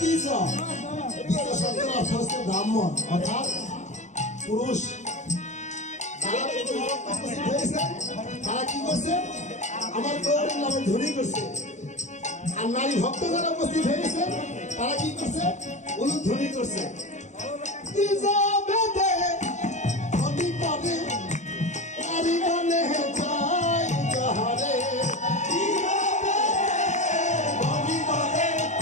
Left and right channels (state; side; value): late; right; 0.34 ms